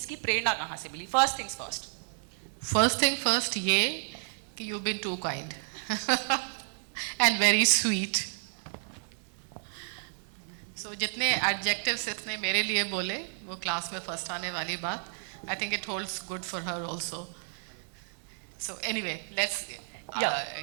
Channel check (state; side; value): silent; left; 57 dB below the other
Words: प्रेरणा कहाँ से मिली? फर्स्ट थिंग फर्स्ट, ये कि you been too kind and very sweet. So जितने एडजेक्टिव्स इसने मेरे लिए बोले वो क्लास में फर्स्ट आने वाली बात, I think it holds good for her also. So anyway, let's